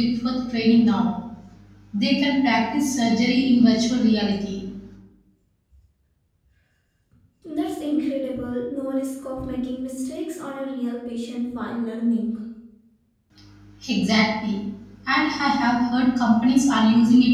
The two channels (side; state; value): both; identical; correlation 1.00